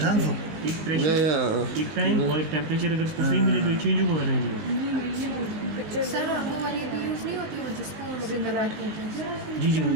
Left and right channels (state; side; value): late; left; 19 ms